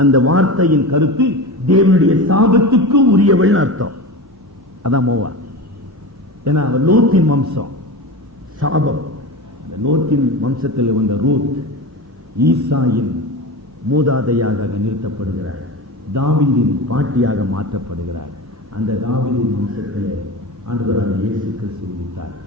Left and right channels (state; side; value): normal; both; correlation 0.27